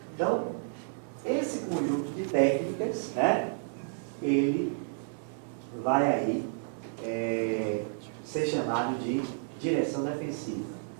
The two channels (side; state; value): left; silent; 57 dB below the other